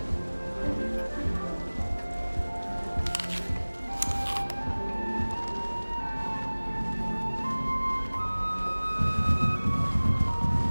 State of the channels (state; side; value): inverted; both; correlation -1.00